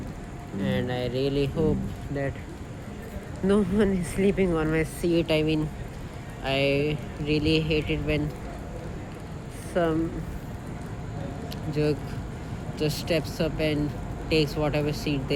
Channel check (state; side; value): identical; both; correlation 1.00